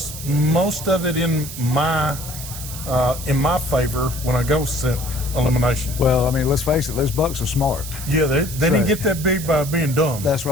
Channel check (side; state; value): right; noise; hiss, 10 dB below the sound